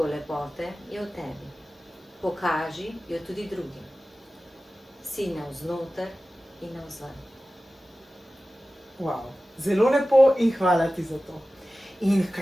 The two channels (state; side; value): normal; both; correlation 0.96